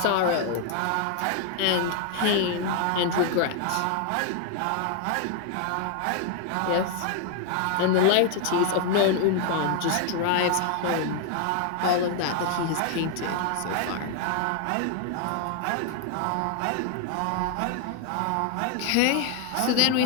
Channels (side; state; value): both; different; correlation 0.00